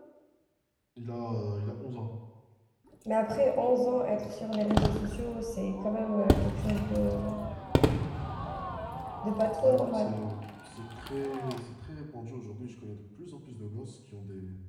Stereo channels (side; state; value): both; identical; correlation 1.00